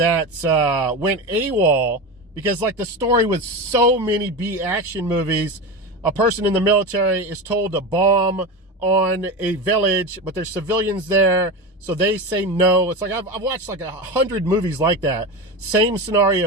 went AWOL because, like the story with so many B action movies, a person in the military is told to bomb on a village, but there's civilians there, so they say no. It's like I've watched like 100 movies like that. Same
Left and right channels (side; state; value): both; normal; correlation 0.22